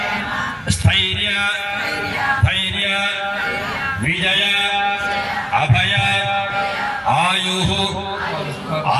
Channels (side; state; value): both; identical; correlation 1.00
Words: స్థైర్య ధైర్య విజయ అభయ ఆయు